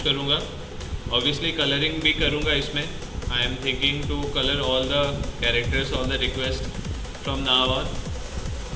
करूँगा। ऑब्वियसली कलरिंग भी करूँगा इसमें। I am thinking to colour all the characters, all the request from now on,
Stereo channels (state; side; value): identical; both; correlation 1.00